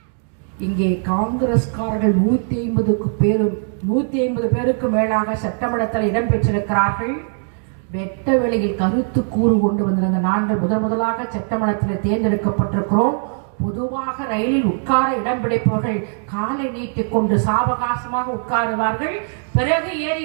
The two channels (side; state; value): left; silent; 56 dB below the other